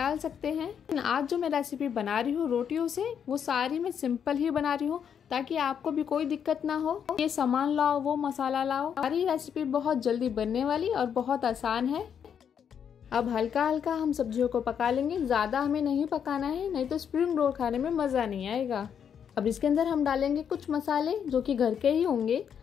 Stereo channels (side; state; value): right; quieter; 8.0 dB